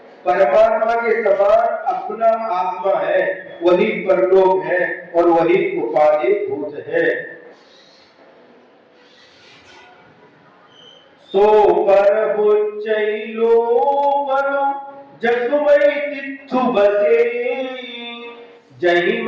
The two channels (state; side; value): identical; both; correlation 1.00